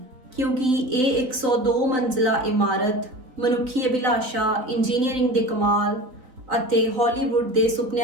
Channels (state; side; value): late; left; 3.9 ms